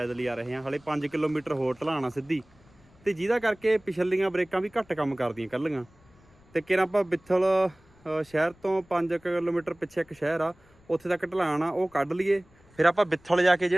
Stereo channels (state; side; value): noise; left; rumble, 29 dB below the sound